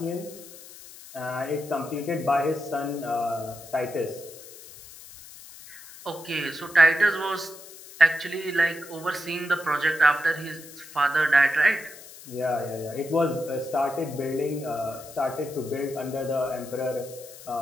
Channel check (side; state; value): left; noise; hiss, 17 dB below the sound